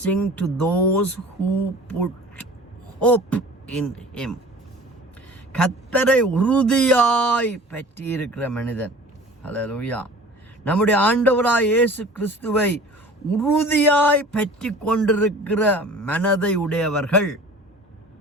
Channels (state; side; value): normal; both; correlation 0.43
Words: to those who put hope in him. கர்த்தரை உறுதியாய் பற்றி இருக்கிற மனிதன். ஹல்லேலூயா. நம்முடைய ஆண்டவராய் இயேசு கிறிஸ்துவை உறுதியாய் பற்றி கொண்டிருக்கிற மனதை உடையவர்கள்,